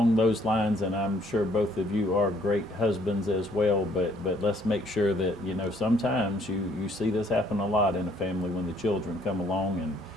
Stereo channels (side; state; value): both; normal; correlation 0.64